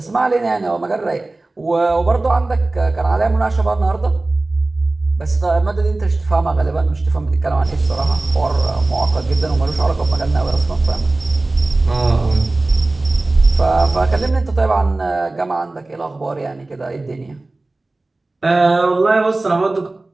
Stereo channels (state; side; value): quieter; left; 3.0 dB